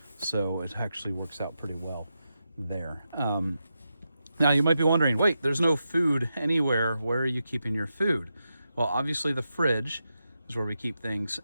So it actually works out pretty well there. Now you might be wondering, wait, there's no food anywhere. Where are you keeping your food? Well, obviously the fridge is where we keep things.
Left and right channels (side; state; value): both; inverted; correlation -0.88